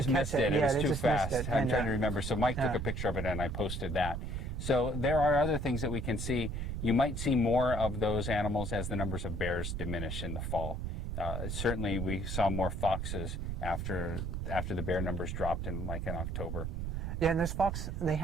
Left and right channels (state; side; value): noise; right; rumble, 3 dB below the sound